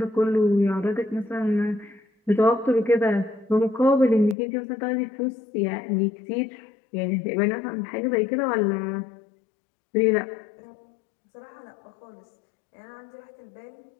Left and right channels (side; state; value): right; drops out; at 4.4 s